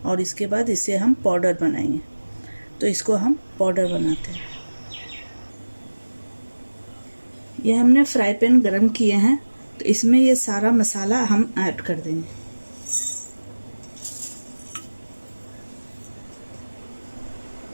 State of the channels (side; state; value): both; inverted; correlation -1.00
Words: और इसके बाद इसे हम पाउडर बनाएंगे। तो इसको हम पाउडर बनाते हैं। ये हमने फ्राई पैन गरम किए हैं, तो इसमें ये सारा मसाला हम ऐड कर देंगे।